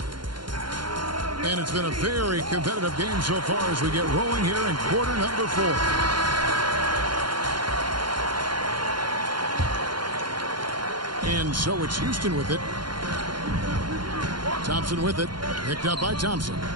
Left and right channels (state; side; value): late; left; 0.72 ms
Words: And it's been a very competitive game so far as we get rolling here in quarter number 4. And so it's Houston with it. Thompson with it. Picked up by Thompson.